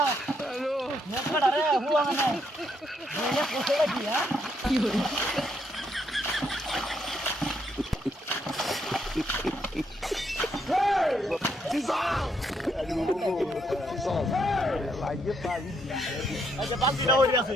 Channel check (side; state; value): both; normal; correlation 0.75